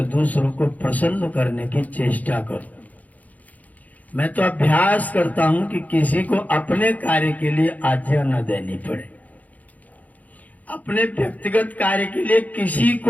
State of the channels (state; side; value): late; right; 0.077 ms